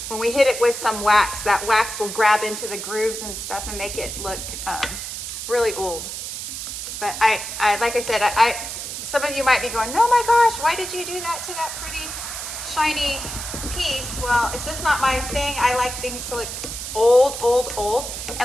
when we hit it with some wax, that wax will grab into the grooves and stuff and make it look really old. But I like I said, some of you might be going, oh my gosh, why did you do that to that pretty shiny piece? Well, it's just not my thing. I like things to look old, old, old.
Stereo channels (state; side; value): noise; right; hiss, 7 dB below the sound